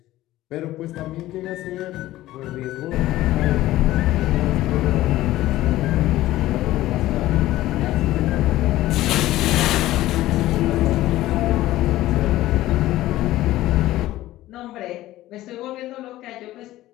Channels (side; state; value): right; quieter; 15.7 dB